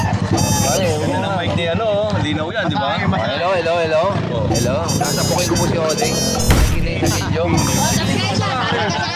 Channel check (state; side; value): identical; both; correlation 1.00